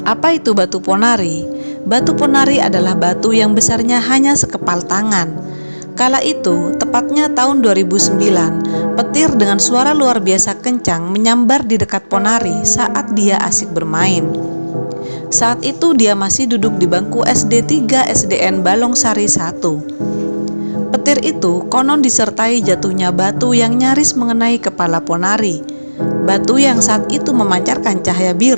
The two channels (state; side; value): inverted; both; correlation -1.00